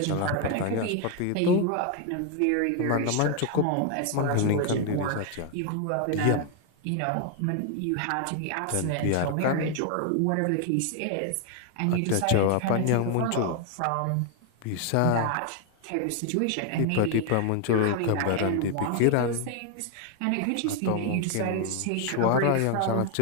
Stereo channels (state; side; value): different; both; correlation 0.01